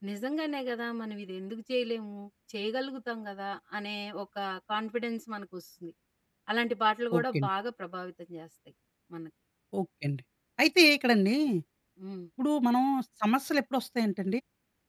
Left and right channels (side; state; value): both; identical; correlation 1.00